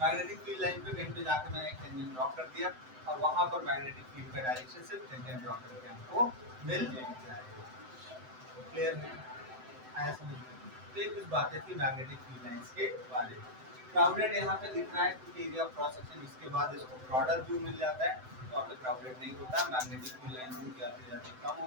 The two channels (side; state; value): left; late; 7.8 ms